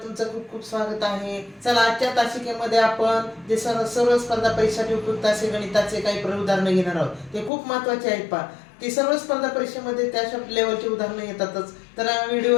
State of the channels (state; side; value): drops out; right; at 7.5 s